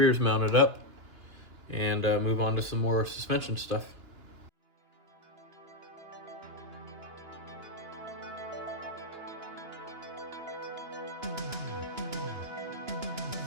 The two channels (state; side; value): late; left; 2.9 ms